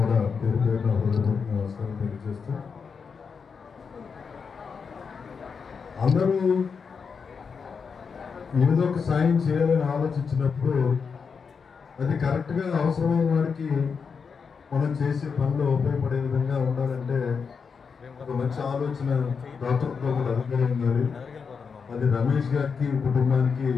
పేరు పేరున హృదయపూర్వక నమస్కారం తెలియజేస్తూ, అందరూ ఏదో ఒక సాయం చేయాలని ఆలోచించినప్పుడు అది కరెక్ట్గా అవసరమైన వారికి మనం చేసే పనిలో ఉపయోగపడే విధంగా ఉండాలంటే ఒక మంచి ఆలోచన దాతృత్వం కూడా అధికారం ఉండాలి. అది రమేష్ గారికి కుటుంబానికి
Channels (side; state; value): right; quieter; 5.7 dB